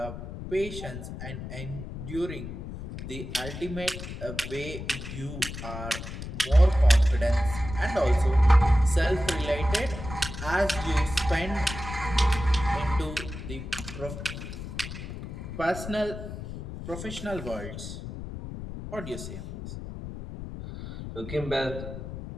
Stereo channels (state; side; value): noise; left; rumble, 9 dB below the sound